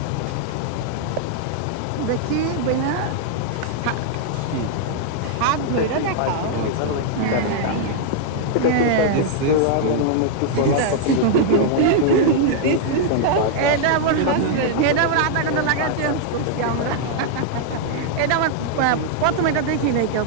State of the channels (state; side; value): different; both; correlation -0.01